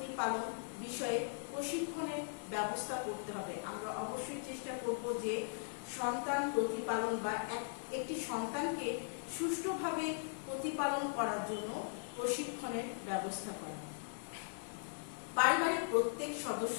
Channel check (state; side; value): silent; right; 52 dB below the other